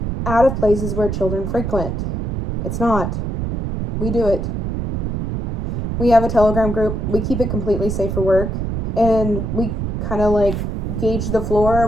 out of places where children frequent. It's not. We do it. We have a Telegram group. We keep it completely safe for work. And we kind of like gauge the floor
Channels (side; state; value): right; noise; rumble, 2 dB below the sound